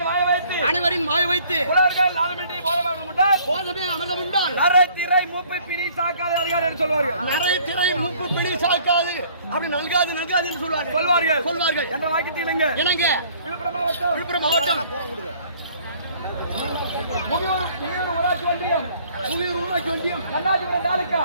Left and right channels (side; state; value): both; inverted; correlation -0.57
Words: அனைவரின் வாய வைத்து புலவர்கள் நாதமின்றி போதமே அமர்தம் உண்டால் நரை திரை மூப்பு பிணி சாக்காது அதிகாரி என்று சொல்வார்கள். நரை திரை மூப்பு பிணி சாக்காது அப்படி நல்காது என்று சொல்வார்கள் என்ற வாக்கியத்தில் இணங்க விழுப்புரம் மாவட்டம் முகியூர் ஊராட்சி ஒன்றியம் புவியூர் ஊராட்சி ஒன்றியம் கண்ணாச்சிபுரம் தாலுகா